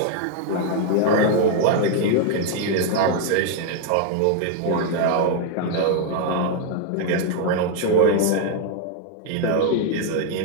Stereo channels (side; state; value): both; different; correlation 0.00